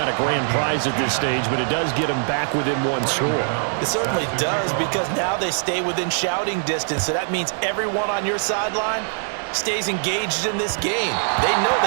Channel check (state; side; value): silent; left; digital silence